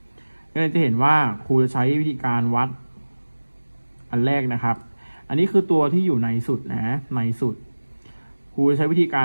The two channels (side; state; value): both; inverted; correlation -1.00